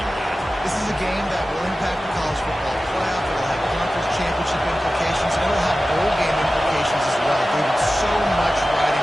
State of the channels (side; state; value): both; normal; correlation 0.95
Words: guys. This is a game that will impact the college football playoff. It'll have conference championship implications, and it'll have bowl game implications as well. David, so much